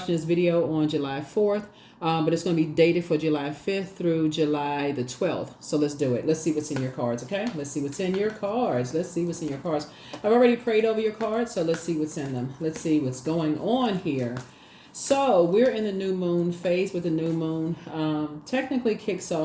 this video on July 4th, but it's going to be dated for July 5th through July the 12th. So let's do it. Let's see what's in your cards, okay? Let's see what's in your cards. Let's see what's in your cards. I've already prayed over your cards, so let's see what's in them. Let's see what's going on here. So we're in the new moon phase with the new moon. Technically kicks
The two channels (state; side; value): identical; both; correlation 1.00